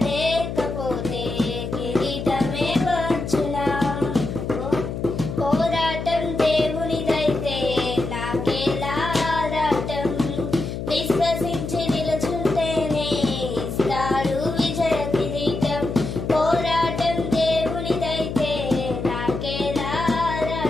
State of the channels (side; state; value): left; noise; hum, 5 dB below the sound